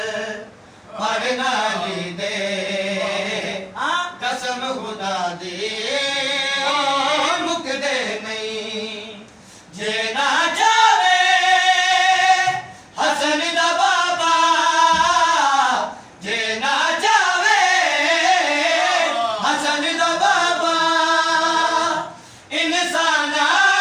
पढ़ना ली दे कसम खुदा दे मुकदे नहीं जे ना जावे हसन दा बाबा जे ना जावे हसन दा बाबा इंसाना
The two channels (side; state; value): both; identical; correlation 1.00